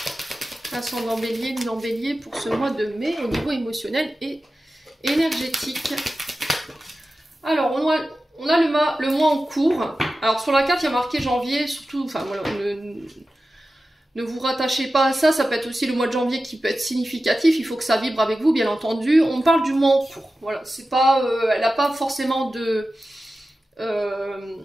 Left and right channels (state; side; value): normal; both; correlation 0.94